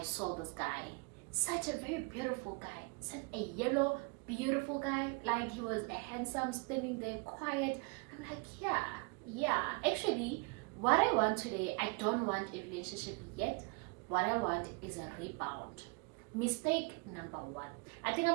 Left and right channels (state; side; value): quieter; left; 31.3 dB